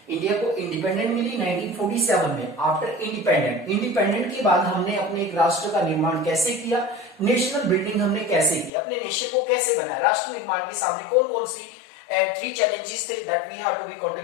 इंडिया को इंडिपेंडेंट मिली 1947 में. आफ्टर इंडिपेंडेंट के बाद हमने अपने एक राष्ट्र का निर्माण कैसे किया, नेशनल बिल्डिंग हमने कैसे की, अपने नेशन को कैसे बनाया, राष्ट्र निर्माण के सामने कौन कौन सी and 3 challenges that we have to be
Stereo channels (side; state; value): right; drops out; at 8.7 s